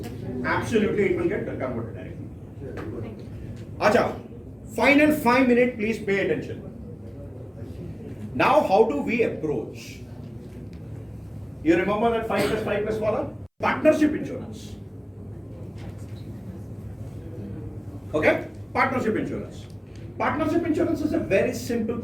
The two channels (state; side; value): identical; both; correlation 1.00